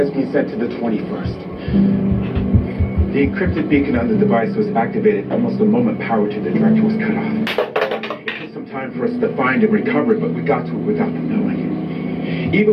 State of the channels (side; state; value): both; identical; correlation 1.00